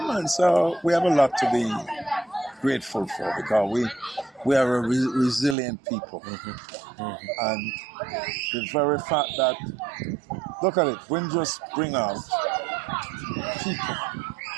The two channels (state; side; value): drops out; left; at 5.6 s